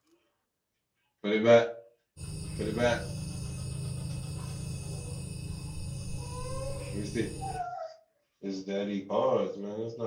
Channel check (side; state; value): both; identical; correlation 1.00